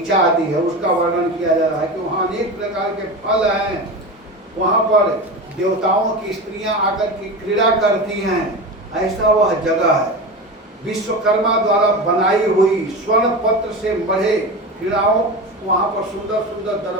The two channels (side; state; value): both; normal; correlation 0.26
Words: आदि है उसका वर्णन किया जा रहा है कि वहाँ अनेक प्रकार के फल हैं। वहाँ पर देवताओं की स्त्रियां आकर के क्रीड़ा करती हैं, ऐसा वह जगह है। विश्वकर्मा द्वारा बनाई हुई स्वर्ण पत्र से मढ़े क्रीड़ाओं, वहाँ पर सुंदर सुंदर